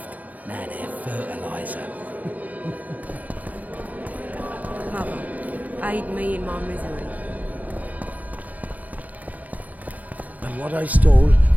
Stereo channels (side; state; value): left; late; 0.077 ms